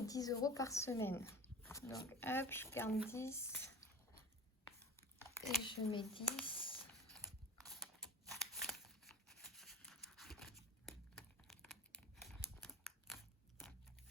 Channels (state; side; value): normal; both; correlation 0.36